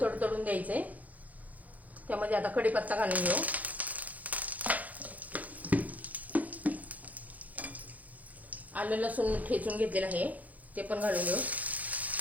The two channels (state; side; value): late; left; 0.077 ms